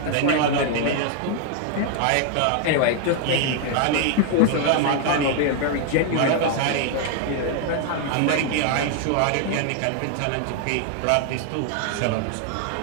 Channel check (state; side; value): different; both; correlation 0.00